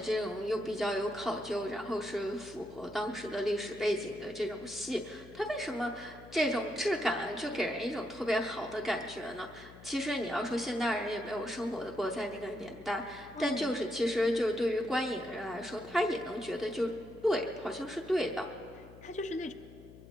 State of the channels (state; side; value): noise; left; hum, 18 dB below the sound